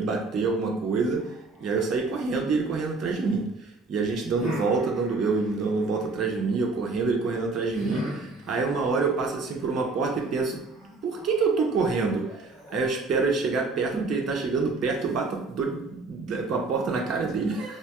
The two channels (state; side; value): quieter; left; 3.8 dB